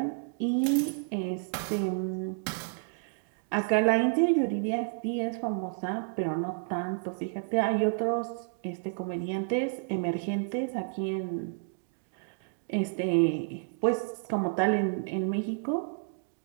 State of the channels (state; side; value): silent; left; digital silence